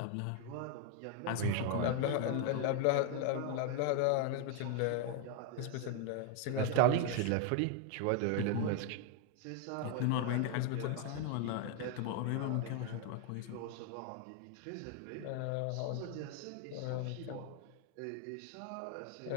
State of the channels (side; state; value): both; different; correlation 0.01